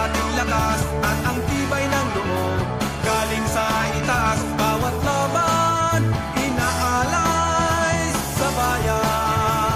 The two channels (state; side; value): identical; both; correlation 1.00